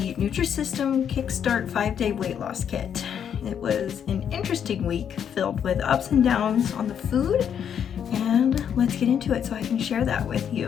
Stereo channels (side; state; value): right; quieter; 8.4 dB